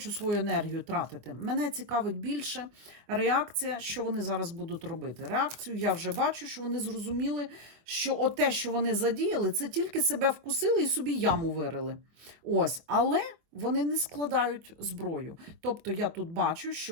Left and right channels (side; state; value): left; late; 24 ms